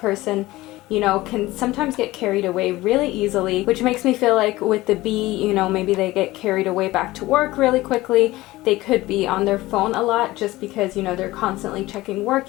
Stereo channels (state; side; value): quieter; right; 18.4 dB